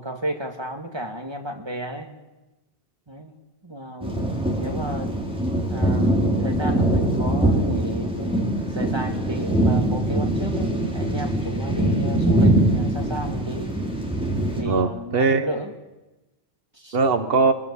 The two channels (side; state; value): both; normal; correlation 0.30